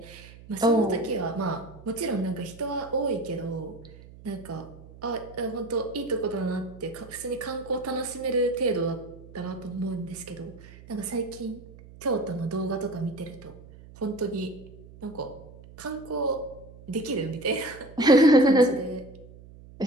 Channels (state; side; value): noise; right; hum, 19 dB below the sound